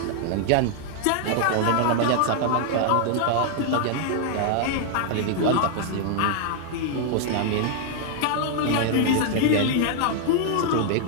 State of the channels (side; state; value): both; different; correlation 0.00